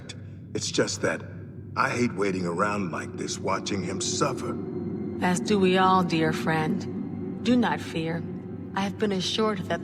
It's just that I hate waiting around like this, watching him suffer. As do we all, dear friend. Do not fear. I have been assured that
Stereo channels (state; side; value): identical; both; correlation 1.00